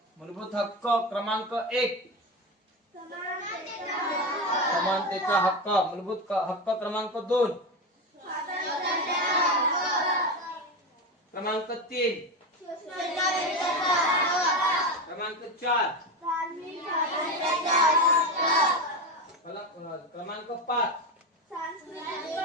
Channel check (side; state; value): both; normal; correlation 0.18